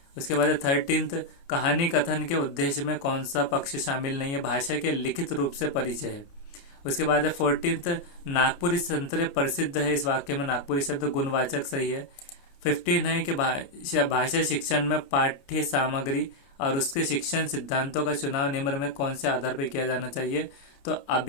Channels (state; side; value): late; right; 29 ms